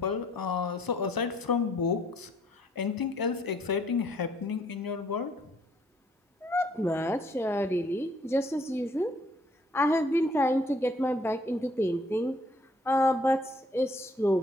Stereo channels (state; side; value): normal; both; correlation 0.64